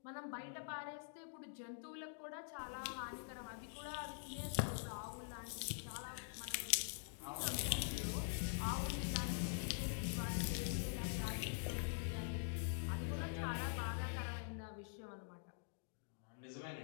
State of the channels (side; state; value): right; silent; digital silence